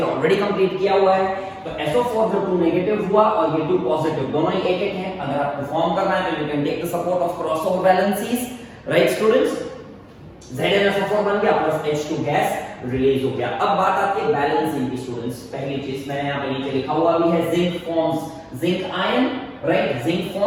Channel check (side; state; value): both; identical; correlation 1.00